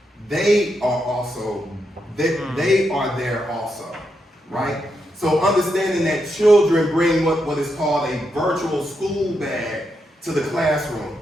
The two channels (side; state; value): both; normal; correlation 0.83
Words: they are there also, right? So understanding that children bring what is called a virtual school bag to the classroom.